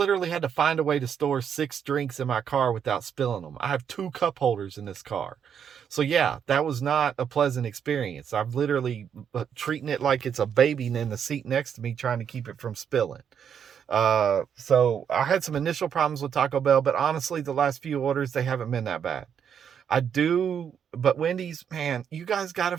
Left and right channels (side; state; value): left; quieter; 8.0 dB